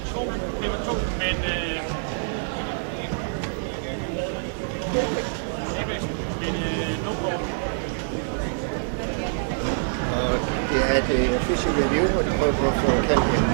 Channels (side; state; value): left; silent; digital silence